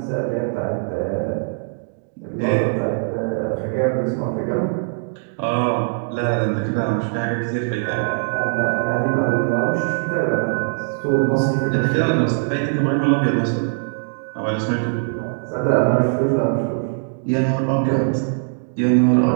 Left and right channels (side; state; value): left; silent; digital silence